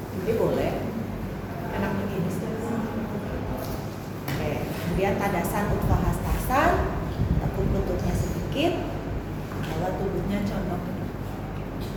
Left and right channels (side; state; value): both; identical; correlation 1.00